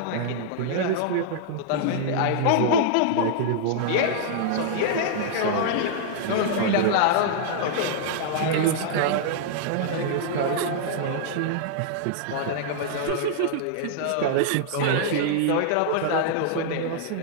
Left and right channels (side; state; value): both; different; correlation -0.01